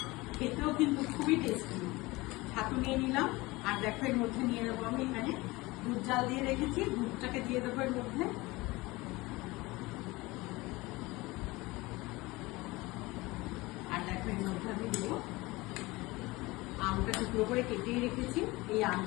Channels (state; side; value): quieter; right; 21.7 dB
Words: খেতেও কিন্তু খুবই টেস্টি। ছাতু নিয়ে নিলাম, আর দেখো এর মধ্যে নিয়ে নেবো আমি এখানে দুধ জাল দিয়ে রেখেছি, দুধটাকে দিয়ে দেবো এর মধ্যে। আর দেখো এর মধ্যে আমি দেবো আমটা টুকরো করে কেটেই রেখেছি, এই